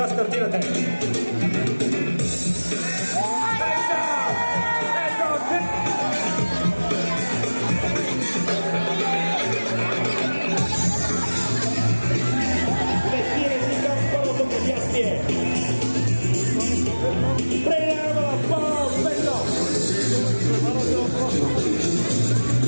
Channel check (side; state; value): both; inverted; correlation -1.00